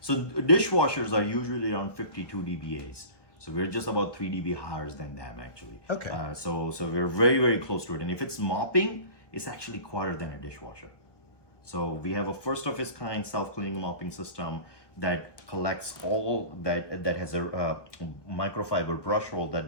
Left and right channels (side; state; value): right; late; 1.1 ms